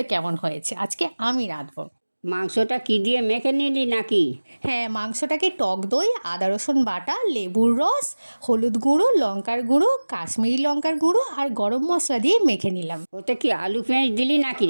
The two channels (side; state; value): both; inverted; correlation -1.00